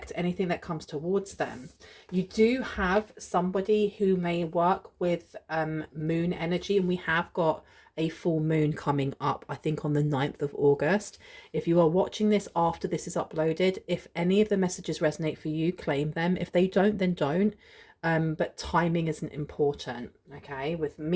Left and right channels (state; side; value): identical; both; correlation 1.00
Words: anything that comes towards them. You do have somebody who may work with moon energy, and we have got a full moon coming up, I think on the 9th of August. If you are watching this after this is uploaded, if any of the messages resonate for you, claim them. If they don't, then don't. But timing isn't important. Okay, with